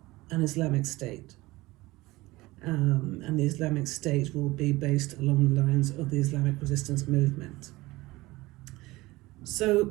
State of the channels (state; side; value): quieter; left; 20.1 dB